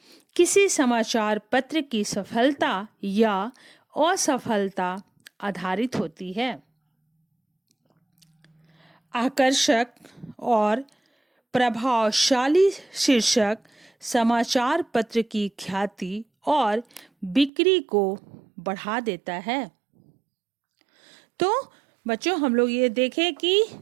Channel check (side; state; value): left; drops out; at 17.5 s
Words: किसी समाचार पत्र की सफलता या असफलता आधारित होती है। आकर्षक और प्रभावशाली शीर्षक समाचार पत्र की ख्याति और बिक्री को बढ़ा देता है। तो बच्चों, हम लोग ये देखें कि